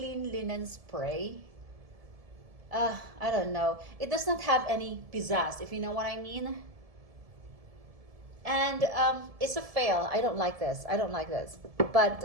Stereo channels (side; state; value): left; late; 1.7 ms